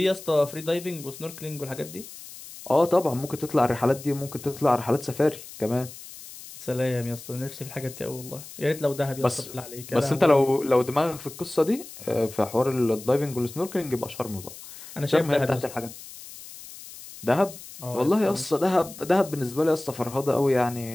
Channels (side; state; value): left; noise; hiss, 15 dB below the sound